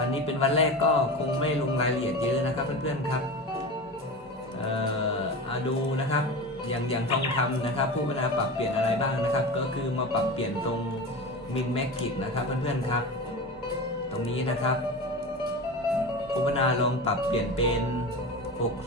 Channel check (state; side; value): normal; both; correlation 0.27